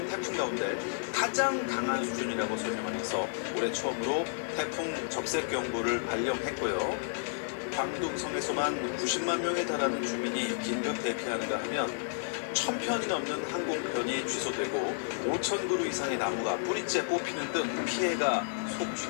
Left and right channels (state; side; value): silent; right; digital silence